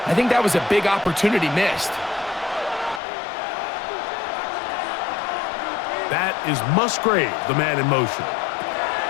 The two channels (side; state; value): right; drops out; at 3.0 s